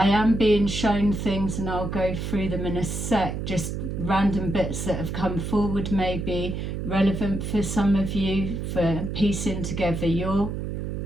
am being shown things, and I'll go through them in a sec, just random bits that have come forward, maybe relevant for some of you, for piecing together your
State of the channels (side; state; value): right; noise; hum, 4 dB below the sound